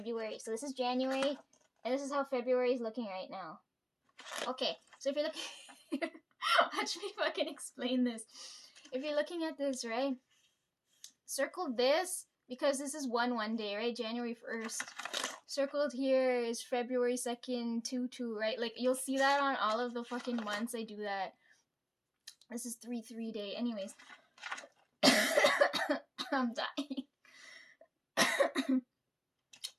So this is January, and this is how February is looking right now. Okay, so if you're looking... Watch me fucking explain this. If you're looking at this, right? Circle this, because this is 1 day, right? January 1st. Circled here is February 2nd, 2/2, right? Like, you'll see that on all of the fucking months I do that. This is 3/3 day. Anyways. I'm dying.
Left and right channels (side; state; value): both; identical; correlation 1.00